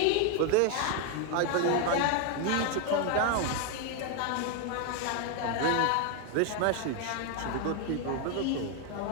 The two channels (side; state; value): both; different; correlation 0.01